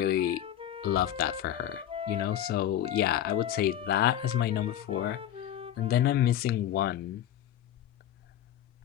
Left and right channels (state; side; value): quieter; right; 11.2 dB